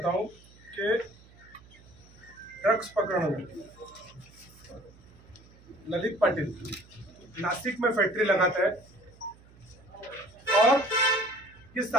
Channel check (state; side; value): noise; right; hum, 25 dB below the sound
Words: हूँ कि ड्रग्स पकड़ने में ललित पाटिल नासिक में फैक्ट्री लगाता है और ये